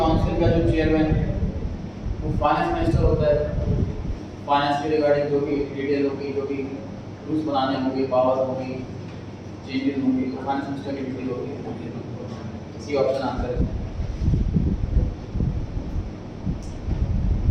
का जो चेयरमैन है वो फाइनेंस मिनिस्टर होता है। फाइनेंस के रिगार्डिंग जो भी डिटेल होगी, जो भी रूल्स बनाने होंगे, पावर होगी, चेंजेस होंगे, तो फाइनेंस मिनिस्टर की ड्यूटी होगी। इसी ऑप्शन आंसर है।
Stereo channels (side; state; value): both; identical; correlation 1.00